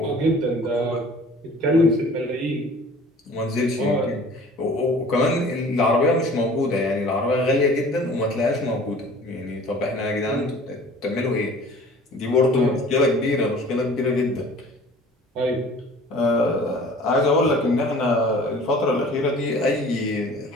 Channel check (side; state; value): both; normal; correlation 0.47